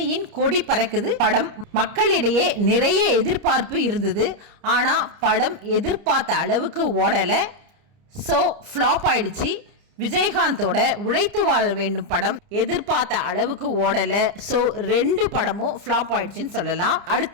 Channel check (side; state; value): left; late; 30 ms